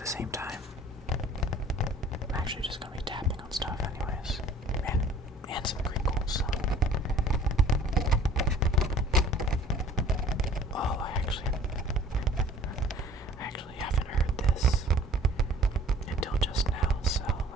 same time, I'm actually just gonna be tapping on stuff anyways, and some crinkles, so. Oh, I actually haven't heard this until just now, so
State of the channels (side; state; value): both; normal; correlation 0.50